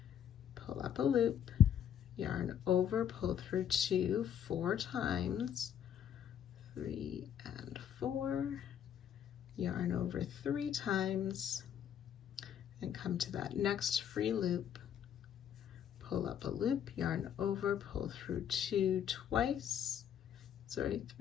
Pull up a loop, yarn over, pull through 2, 4 times, 3 and 4, yarn over 3 times, and come to that next free loop, pull up a loop, yarn over, pull through 2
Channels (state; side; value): quieter; right; 9.3 dB